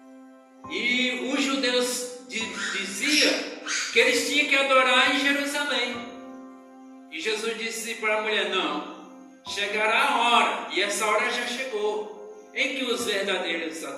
E os judeus diziam que eles tinham que adorar em Jerusalém. E Jesus disse para a mulher: não, chegará a hora, e essa hora já chegou, em que os verdadeiros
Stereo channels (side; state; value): both; identical; correlation 1.00